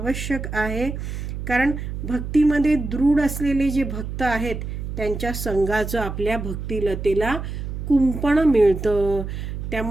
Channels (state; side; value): noise; right; hum, 6 dB below the sound